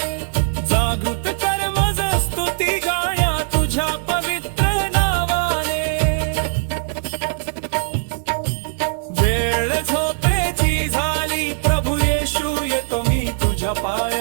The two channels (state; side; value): silent; left; digital silence